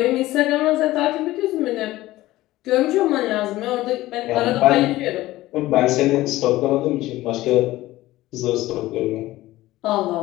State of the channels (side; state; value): right; quieter; 16.9 dB